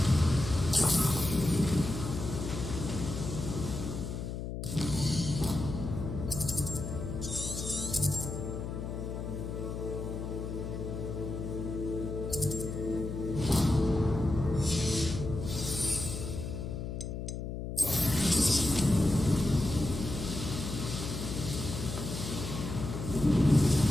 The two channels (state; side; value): noise; left; hum, 5 dB below the sound